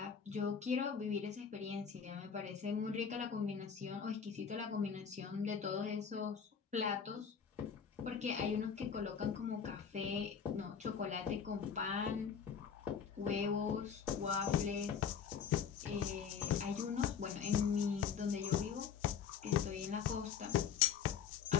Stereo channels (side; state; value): right; quieter; 7.1 dB